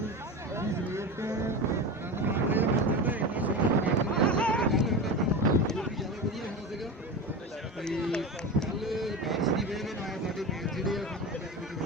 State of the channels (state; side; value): normal; both; correlation 0.25